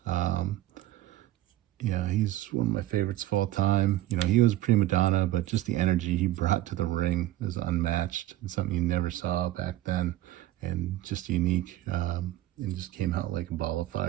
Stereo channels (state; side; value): quieter; left; 14.9 dB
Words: Yeah, he's one of my favorites of all time. You know, he was a prima donna, but just the energy he brought to the ring was unmatched and something you never saw back then, and just unique, and just came out like a ball of